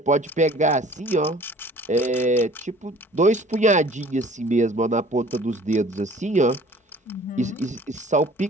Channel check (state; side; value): normal; both; correlation 0.50